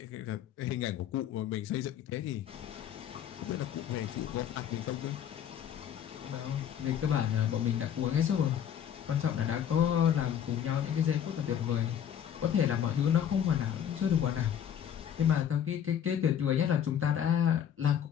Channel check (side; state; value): right; quieter; 9.3 dB